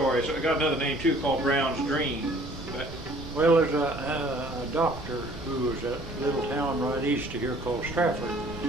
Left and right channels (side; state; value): right; noise; rumble, 13 dB below the sound